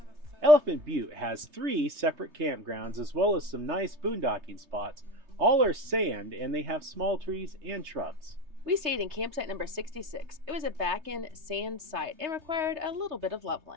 Elephant Butte has 3 separate campgrounds as well as some nice boondocking spots. All are sand and they have small trees and shrubs. We stayed in campsite number 66. It was a back-end sand site and required a little bit of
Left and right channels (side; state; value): left; late; 3.3 ms